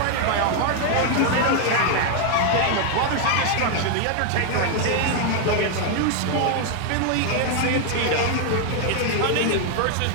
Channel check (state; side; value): different; both; correlation 0.00